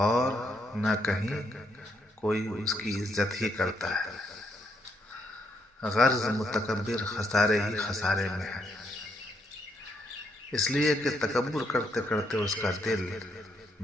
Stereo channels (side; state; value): both; normal; correlation 0.75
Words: اور نہ کہیں کوئی اس کی عزت ہی کرتا ہے. غرض متکبر خسارے ہی خسارے میں ہے، اس لیے کہ تکبر کرتے کرتے اس کا دل